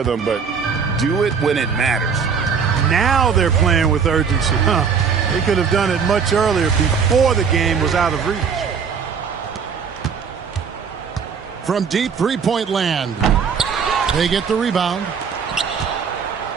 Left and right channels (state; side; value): quieter; left; 6.3 dB